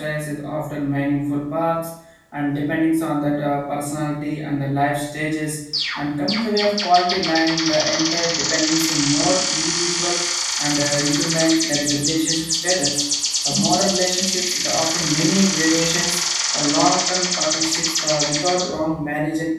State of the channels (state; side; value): identical; both; correlation 1.00